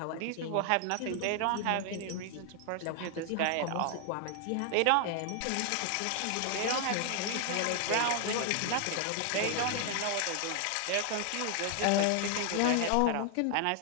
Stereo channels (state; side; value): different; both; correlation 0.00